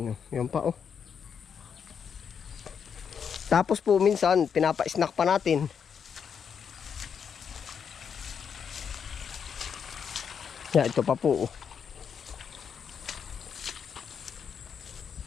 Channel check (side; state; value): right; quieter; 7.1 dB